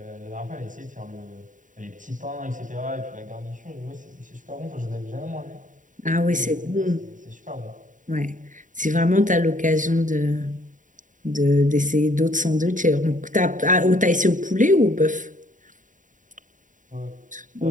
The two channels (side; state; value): left; late; 0.37 ms